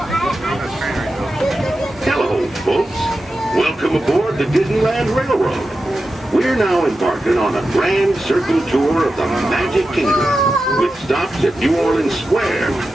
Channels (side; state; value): both; normal; correlation 0.91